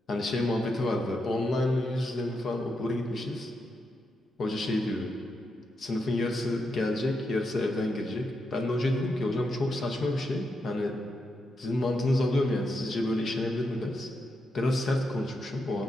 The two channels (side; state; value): both; normal; correlation 0.84